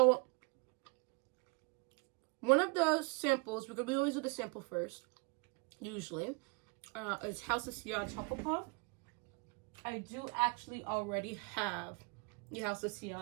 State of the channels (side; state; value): left; quieter; 30.8 dB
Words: one of the samples, because we always do the sample first, usually, is House of Sillage Hufflepuff. I do actually already have the House of